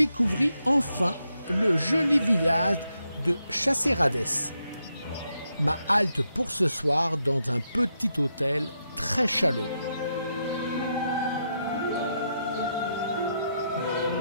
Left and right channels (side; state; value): both; inverted; correlation -0.82